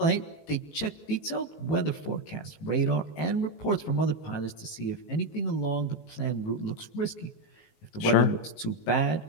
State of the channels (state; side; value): late; right; 18 ms